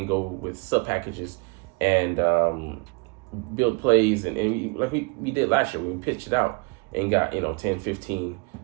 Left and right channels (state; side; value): quieter; left; 29.8 dB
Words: go with sub packages and build plays and like we did last year when we pitched it out and got 10, 15,